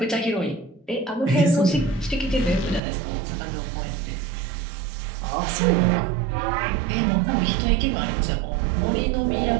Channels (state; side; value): drops out; left; at 2.8 s